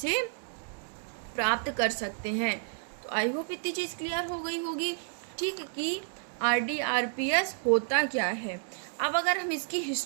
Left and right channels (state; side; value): silent; left; digital silence